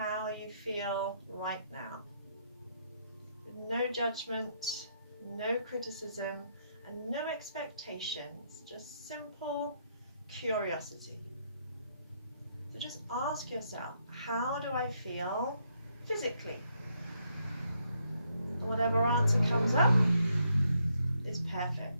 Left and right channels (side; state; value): both; inverted; correlation -0.75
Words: you feel right now. With no judgment, no criticism, and no expectations, just simple curiosity. So just ask yourself, how do I feel physically? And whatever answer comes up is